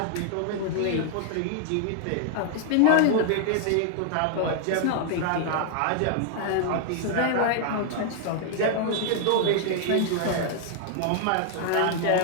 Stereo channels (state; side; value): different; both; correlation 0.00